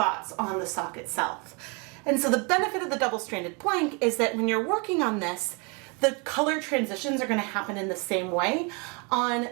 on the sock itself. And so the benefit of the double-stranded blank is that when you're working on this, the color transitions are going to happen in the same way on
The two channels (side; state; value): left; quieter; 32.4 dB